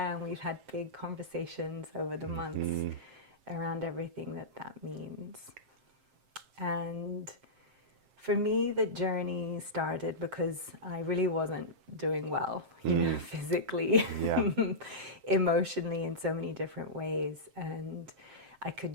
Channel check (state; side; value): late; left; 7.6 ms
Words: And we've had big conversations over the months around everything that means. And for me, the journey started because I really wasn't doing well, physically, emotionally, in so many different ways, and I